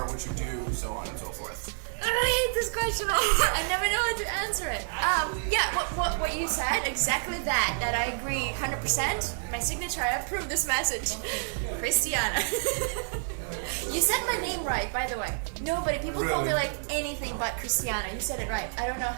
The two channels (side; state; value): left; silent; 59 dB below the other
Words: what you do, so on and so forth. I hate this question. I never know how to answer it. What you said, exactly that I agree 100%. My signature, I approve this message. Christiana. You said my name right, by the way. Nobody, people call me like anything but Christiana. You said it right. I don't know